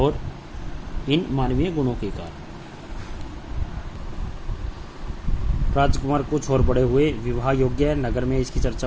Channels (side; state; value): both; identical; correlation 1.00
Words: इन मानवीय गुणों के कारण। राजकुमार कुछ और बड़े हुए, विवाह योग्य नगर में इसकी चर्चा